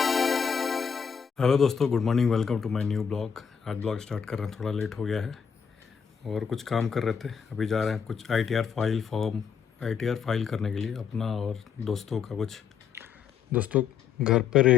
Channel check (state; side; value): quieter; right; 7.0 dB